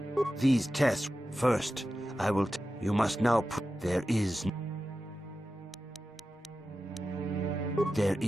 These tests... First, I will... You must now... There is... There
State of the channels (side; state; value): both; normal; correlation 0.92